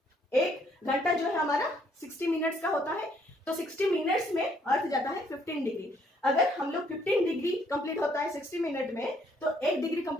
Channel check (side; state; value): both; normal; correlation 0.67